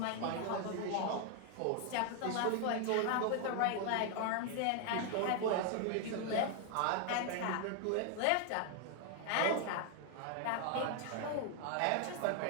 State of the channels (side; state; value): both; different; correlation 0.00